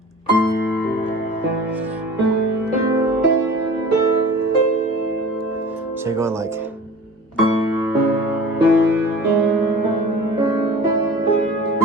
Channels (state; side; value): normal; both; correlation 0.41